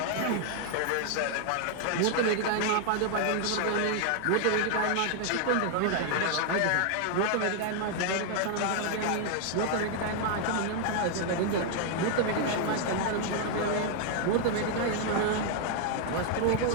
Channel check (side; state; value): both; different; correlation 0.00